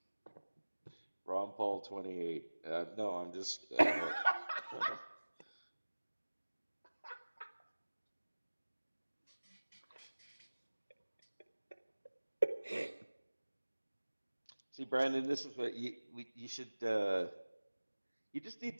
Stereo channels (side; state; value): both; inverted; correlation -1.00